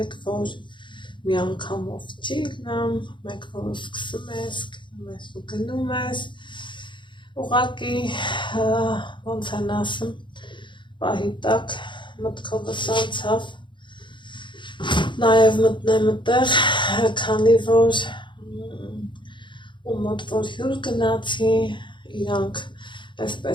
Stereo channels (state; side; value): late; right; 0.23 ms